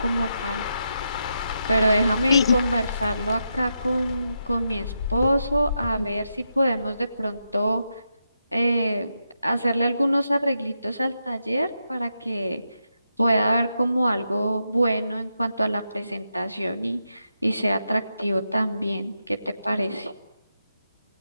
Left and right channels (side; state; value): both; inverted; correlation -0.85